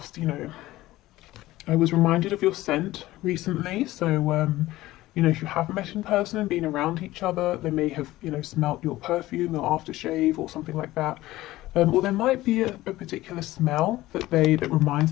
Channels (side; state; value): right; quieter; 16.8 dB